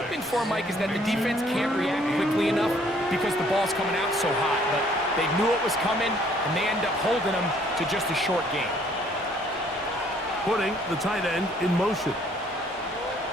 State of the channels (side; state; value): both; normal; correlation 0.62